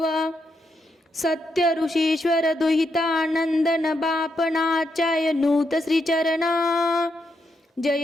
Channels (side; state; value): both; normal; correlation 0.81